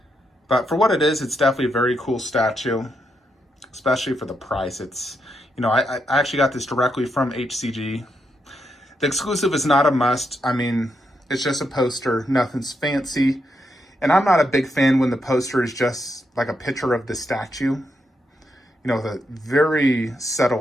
But for what it is, it's definitely a very cool statue, especially for the price. It's, you know, I actually got this directly from HCG. The exclusive is not a must. I mean, it's just a poster, nothing's fancy. And I'm not a big fan when the poster is just like a picture of the statue. You know, the very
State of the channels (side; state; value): both; normal; correlation 0.81